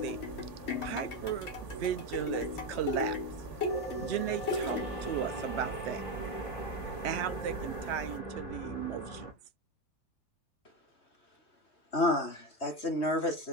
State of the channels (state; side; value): late; right; 3.2 ms